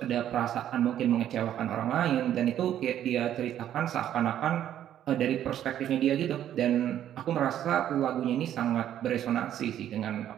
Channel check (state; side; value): quieter; left; 11.0 dB